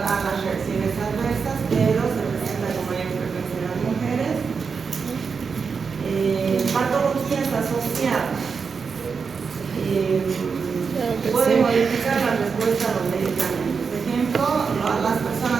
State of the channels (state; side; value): quieter; left; 5.5 dB